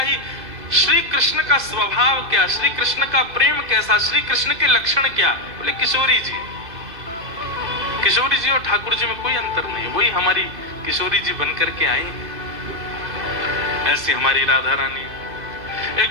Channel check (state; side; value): late; left; 2.6 ms